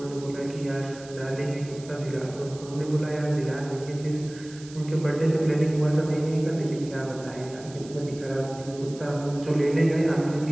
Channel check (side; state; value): right; noise; hiss, 19 dB below the sound